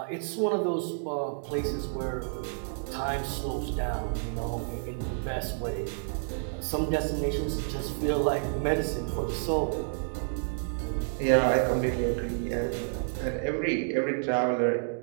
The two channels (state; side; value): silent; left; digital silence